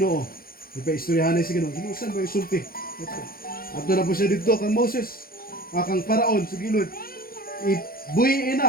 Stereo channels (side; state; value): right; late; 0.43 ms